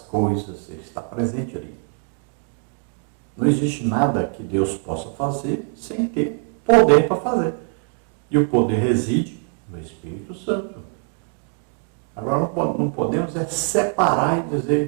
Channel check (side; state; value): left; quieter; 39.4 dB